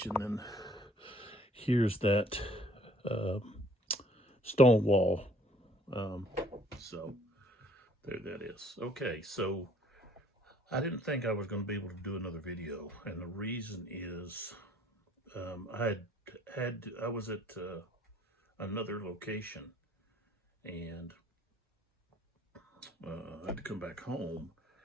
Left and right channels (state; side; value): normal; both; correlation 0.59